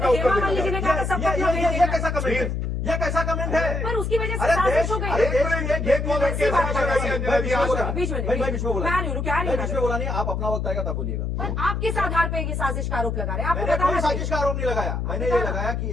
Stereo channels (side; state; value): left; noise; hum, 2 dB below the sound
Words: उत्तर हेमा मालिनी जी ने कहा था सबको अपना वेट ये देखना कैसा कमेंट है? ये कैसा कमेंट है? पर उसकी वजह से अरे साजिश देश, हो गई। अरे देश, ये कौन है? कैसे बात कर रही है अंजना जी? आज बीच में मैं बीच में बोला, मैं आ रही हूँ, रुकिए, आ रही हूँ। मैं बीच में बोला नहीं, आप अपना वक्त आएगा तब बोलिएगा। पर आप किस आधार पे ये साजिश का आरोप लगा रहे हैं? आपको मैंने कोई बताना साजिश का चाहिए। आरोप नहीं लगाया। मैंने ये लगाया